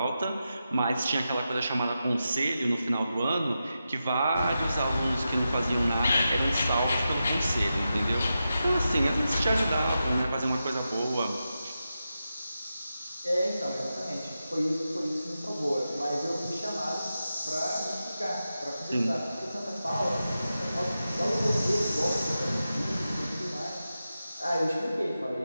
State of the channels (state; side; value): inverted; both; correlation -0.90